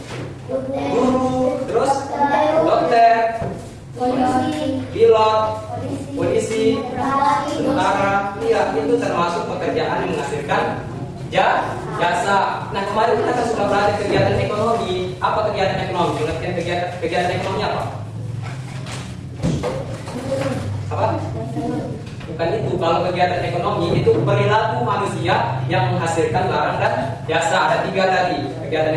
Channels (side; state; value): both; identical; correlation 1.00